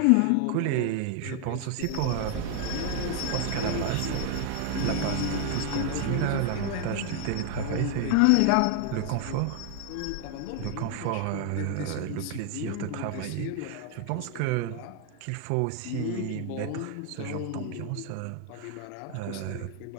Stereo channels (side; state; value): both; different; correlation 0.00